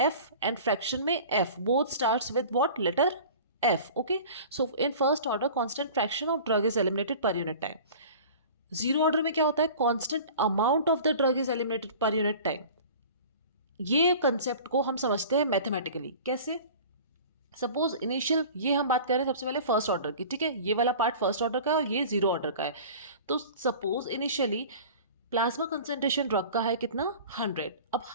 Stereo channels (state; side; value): inverted; both; correlation -0.40